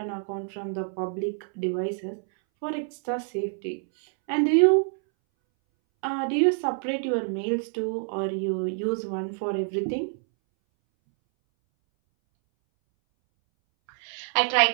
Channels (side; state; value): left; silent; 60 dB below the other